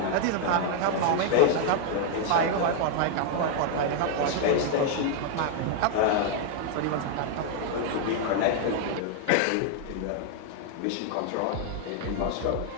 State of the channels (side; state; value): both; different; correlation 0.00